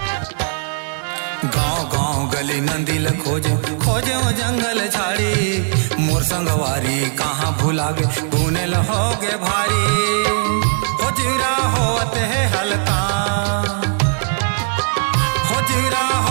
गाँव गाँव गली नंदिल खोजो खोजो जंगल झाड़ी, मोर संगवारी कहाँ भुला गे तूने लहोगे भारी। हो जीरा होत है हलकान, हो जीरा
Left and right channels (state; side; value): silent; left; digital silence